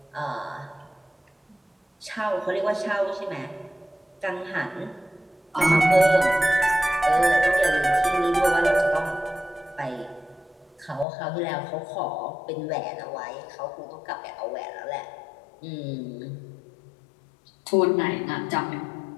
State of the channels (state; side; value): drops out; right; at 11.1 s